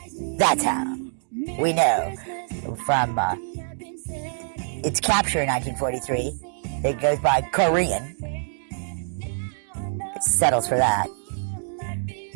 That's how we know from its capture in 1943. It goes by Korean. It settles for that.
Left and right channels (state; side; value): silent; left; digital silence